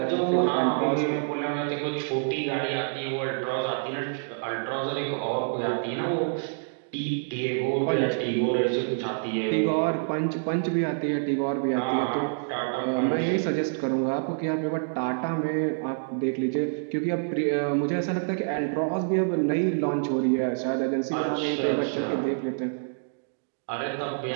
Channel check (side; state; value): left; silent; digital silence